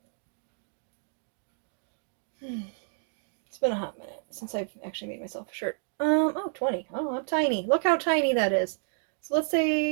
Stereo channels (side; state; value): left; silent; digital silence